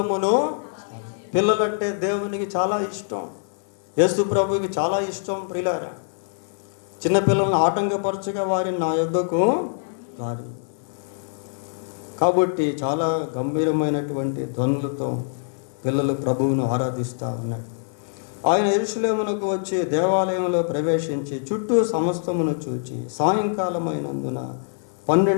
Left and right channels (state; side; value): silent; right; 55 dB below the other